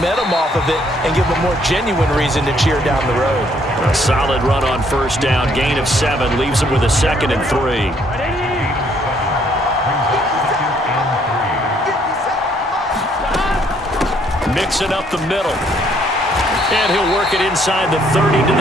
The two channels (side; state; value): both; normal; correlation 0.67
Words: off of it and give them a more genuine reason to cheer down the road. A solid run on 1st down. Gain of 7 leaves them with a 2nd and 3. Mixing up the middle. And he'll work it inside the 30 to